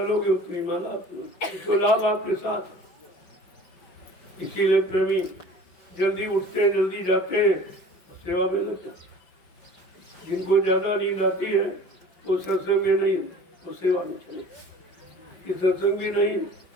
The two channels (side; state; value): right; late; 5.6 ms